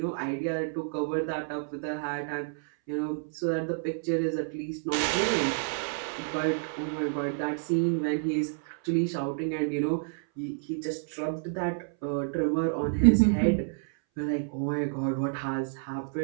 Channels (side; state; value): left; silent; 58 dB below the other